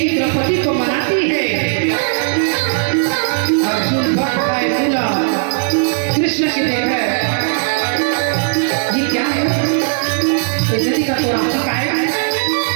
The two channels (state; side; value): silent; left; digital silence